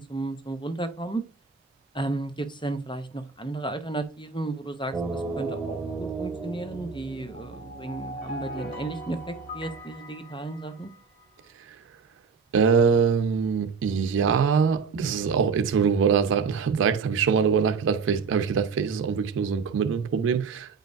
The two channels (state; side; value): quieter; left; 5.5 dB